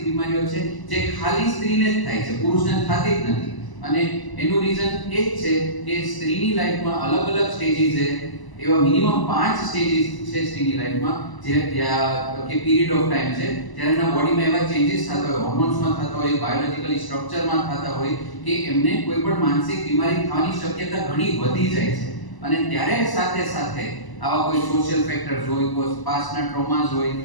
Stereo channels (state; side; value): late; right; 1.0 ms